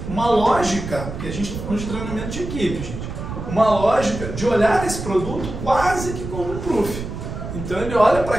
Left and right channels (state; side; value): noise; right; rumble, 8 dB below the sound